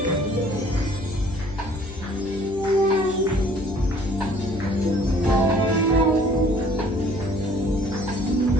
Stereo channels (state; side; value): noise; left; hum, 14 dB below the sound